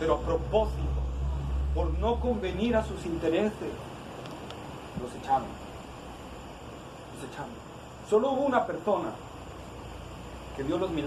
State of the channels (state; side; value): identical; both; correlation 1.00